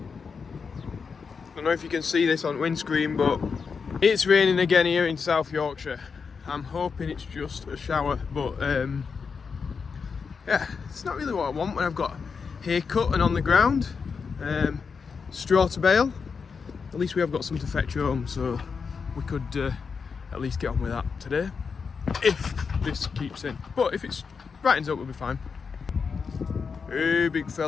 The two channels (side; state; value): right; quieter; 5.5 dB